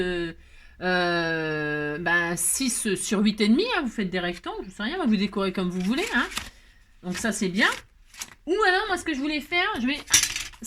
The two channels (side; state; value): both; identical; correlation 1.00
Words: 6 sur 8,5. Hein, vous faites des rectangles, je sais rien. Vous décorez comme vous voulez. Hein. Donc, ça, c'est bien. Ou alors, moi, ce que je voulais faire,